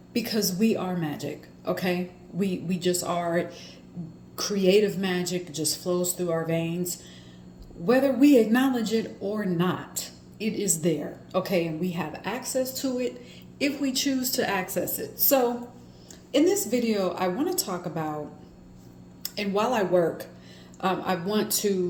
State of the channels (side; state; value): both; identical; correlation 1.00